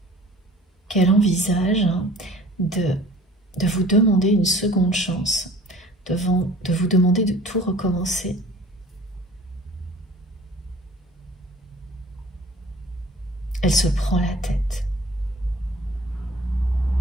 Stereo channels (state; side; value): normal; both; correlation 0.48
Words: qu'elle envisage de vous demander une seconde chance, de vous demander de tout recommencer, elle se prend la tête.